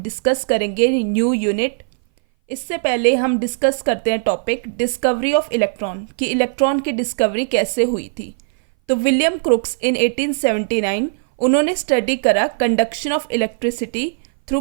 करेंगे न्यू यूनिट। इससे पहले हम डिस्कस करते हैं टॉपिक डिस्कवरी ऑफ इलेक्ट्रॉन कि इलेक्ट्रॉन की डिस्कवरी कैसे हुई थी। तो विलियम क्रुक्स इन 1879 उन्होंने स्टडी करा conduction of electricity through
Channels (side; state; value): left; silent; 60 dB below the other